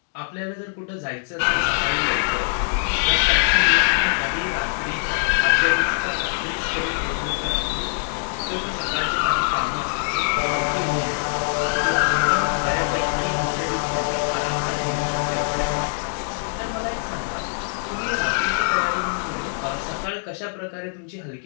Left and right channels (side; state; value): right; silent; digital silence